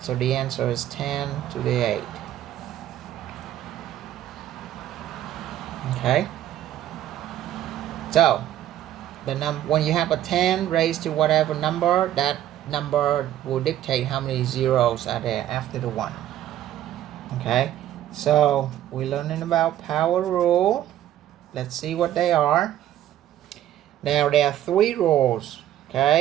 the answer is 10 to the 8. Okay. So when you have a 10 raised to whatever number, that number will dictate how many zeros are there after the 1. Okay. So we're learning about power rule. Let's see what they are. Now there are 3 rules.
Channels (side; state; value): left; quieter; 12.2 dB